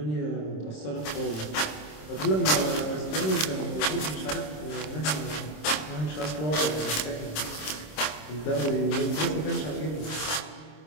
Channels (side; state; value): right; late; 26 ms